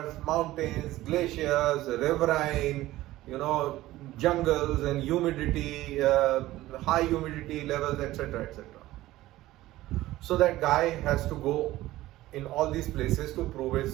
mountains, glaciers, riverine, jungles and humidity, high humidity levels, etc., etc. So that guy has to go in all these places to prove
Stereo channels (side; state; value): left; quieter; 16.3 dB